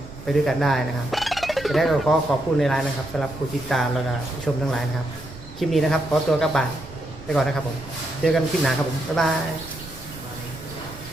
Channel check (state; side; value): noise; right; rumble, 17 dB below the sound